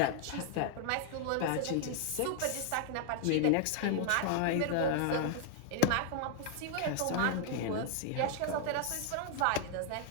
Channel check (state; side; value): different; both; correlation -0.01